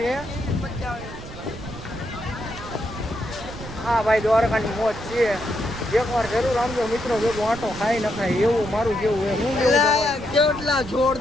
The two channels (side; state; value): right; noise; rumble, 13 dB below the sound